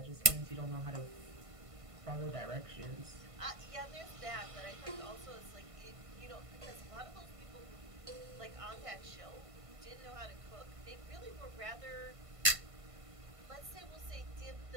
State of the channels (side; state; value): left; late; 1.5 ms